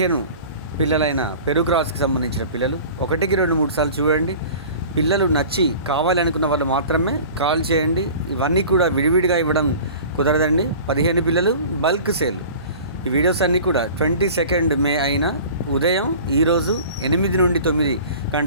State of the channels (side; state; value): both; inverted; correlation -0.41